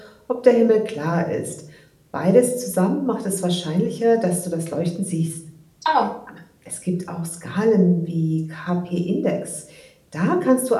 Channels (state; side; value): identical; both; correlation 1.00